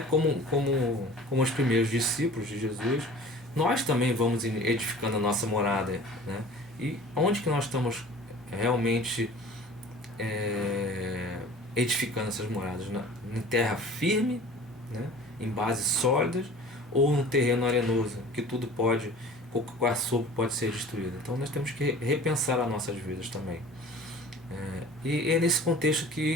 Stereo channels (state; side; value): normal; both; correlation 0.43